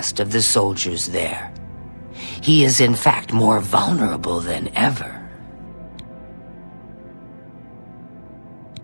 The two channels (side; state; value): both; inverted; correlation -1.00